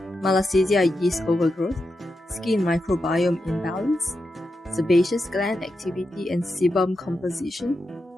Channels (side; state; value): both; normal; correlation 0.88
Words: Malassezia yeast overgrowth, skin microbiome imbalance, sebaceous gland activity and sebum composition,